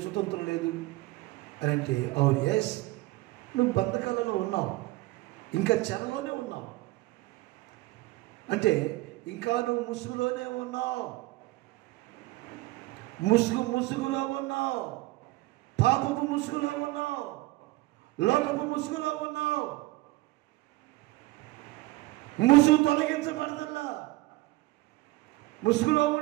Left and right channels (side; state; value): left; quieter; 19.8 dB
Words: లేదు అని అంటే అవును, ఎస్, నువ్వు బంధకాలలో ఉన్నావు, ఇంకా చెరలోనే ఉన్నావు, అంటే ఇంకా నువ్వు ముసుగులోనే ఉన్నావు, ముసుగులో ఉన్నావు, పాపపు ముసుగులో ఉన్నావు, లోకపు ముసుగులో ఉన్నావు. ముసుగు తొలగించబడదల్లా. ముసుగులో